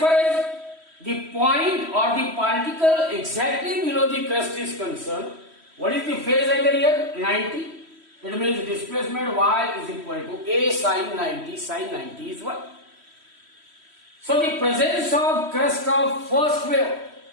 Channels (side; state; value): left; late; 3.1 ms